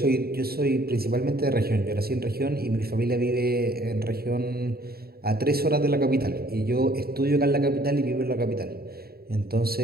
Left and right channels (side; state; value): left; late; 0.45 ms